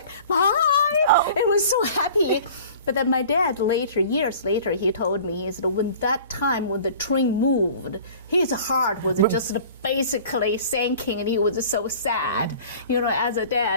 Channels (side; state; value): both; inverted; correlation -0.45